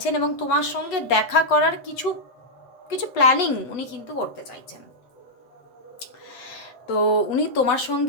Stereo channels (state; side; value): late; right; 8.1 ms